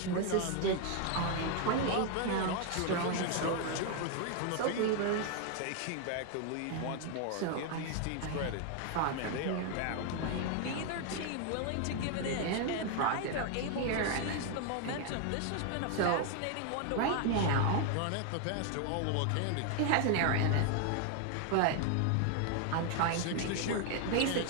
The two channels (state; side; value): different; both; correlation 0.00